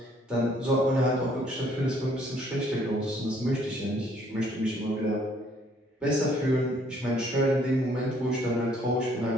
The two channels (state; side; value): normal; both; correlation 0.63